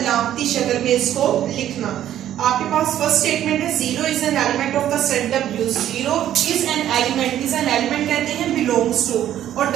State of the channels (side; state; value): left; quieter; 11.6 dB